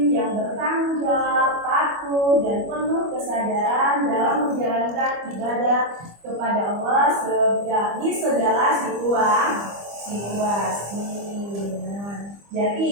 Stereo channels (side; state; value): left; late; 25 ms